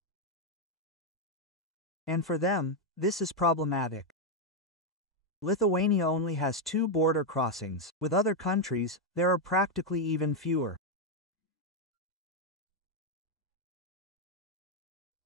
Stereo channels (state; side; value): normal; both; correlation 0.02